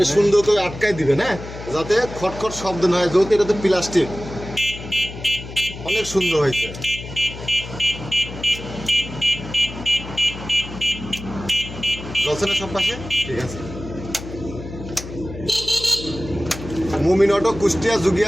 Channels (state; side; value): noise; left; hum, 12 dB below the sound